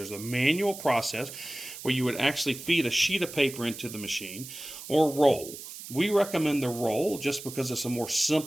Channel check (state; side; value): noise; right; hiss, 12 dB below the sound